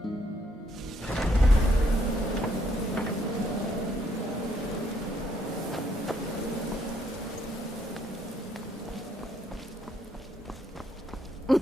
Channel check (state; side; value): normal; both; correlation 0.71